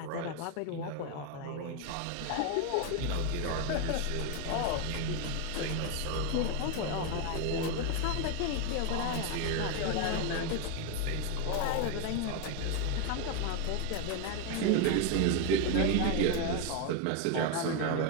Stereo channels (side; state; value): both; different; correlation 0.02